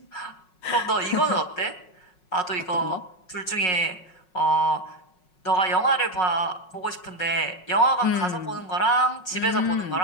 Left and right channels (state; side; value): late; right; 5.5 ms